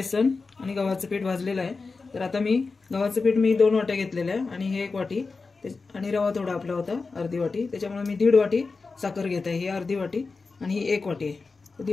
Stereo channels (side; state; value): right; quieter; 4.2 dB